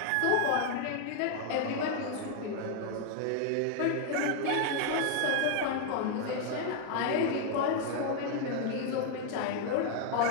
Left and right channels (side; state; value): both; different; correlation 0.00